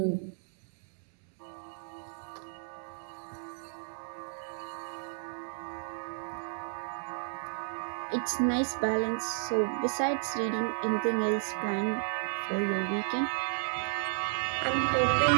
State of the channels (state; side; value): silent; left; digital silence